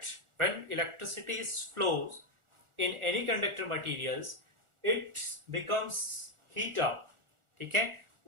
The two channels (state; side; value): late; left; 1.4 ms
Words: when electricity is flows in any conductor materials, it becomes heat up, ठीक है.